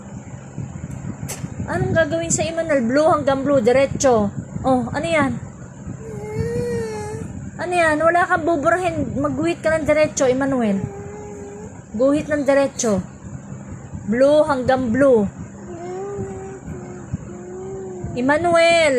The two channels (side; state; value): both; identical; correlation 1.00